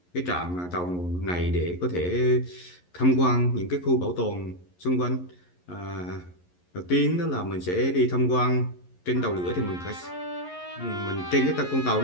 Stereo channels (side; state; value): right; late; 11 ms